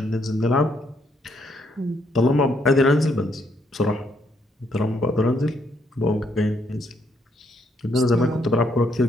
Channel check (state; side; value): normal; both; correlation 0.73